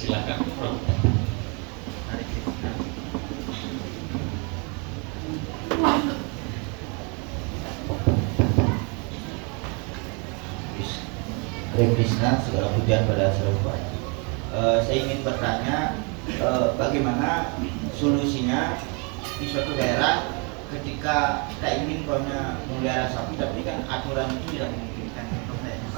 Bro. Hare Krishna, segala pujian pada Saraswati. Saya ingin bertanya, bagaimana solusinya di suatu daerah ketika kita ingin memelihara sapi, tapi kan aturan itu tidak memungkinkan,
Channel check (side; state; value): left; quieter; 33.5 dB